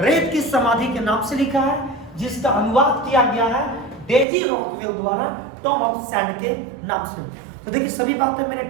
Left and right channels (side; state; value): left; drops out; at 4.2 s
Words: की समाधि के नाम से लिखा है, जिसका अनुवाद किया गया है डेजी रॉकवेल द्वारा टॉम ऑफ सैंड के नाम से। तो देखिए सभी बातें मैंने